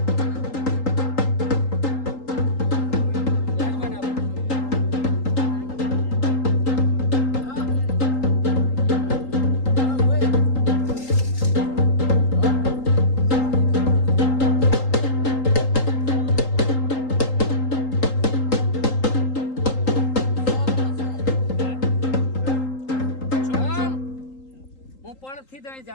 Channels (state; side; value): late; right; 3.8 ms